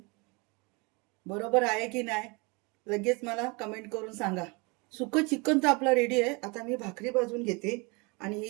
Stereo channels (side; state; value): left; quieter; 28.9 dB